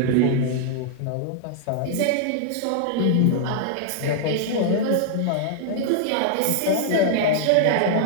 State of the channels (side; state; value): both; different; correlation -0.01